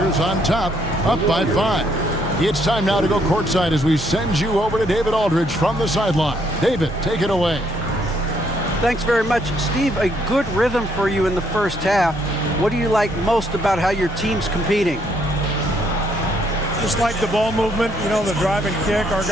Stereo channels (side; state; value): both; normal; correlation 0.70